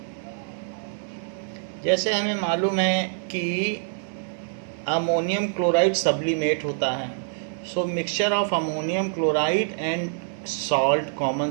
जैसे हमें मालूम है कि ammonium chloride sublimate होता है, so mixture of ammonium chloride and salt,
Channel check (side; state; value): left; silent; 58 dB below the other